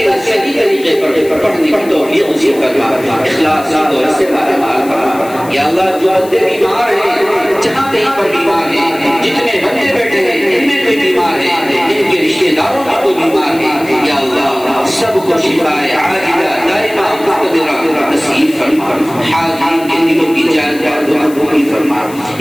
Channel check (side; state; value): left; noise; hiss, 19 dB below the sound